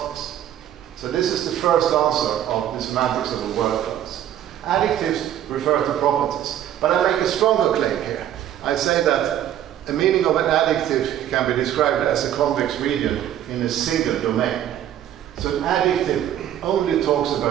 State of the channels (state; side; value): quieter; left; 11.2 dB